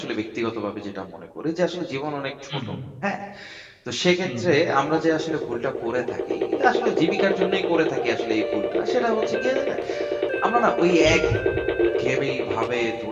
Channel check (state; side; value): identical; both; correlation 1.00